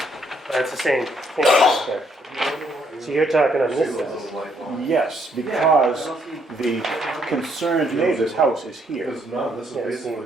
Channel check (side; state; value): both; normal; correlation 0.71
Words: That's the same thing. Okay. So you're talking on See this the side. little light line? Yes, because the concerned neighbor's house is here. Because none, this is Yeah, so basically.